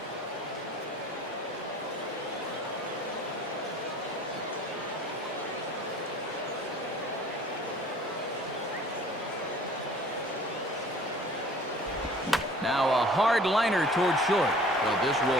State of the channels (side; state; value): both; normal; correlation 0.49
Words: hard liner toward short. Well, this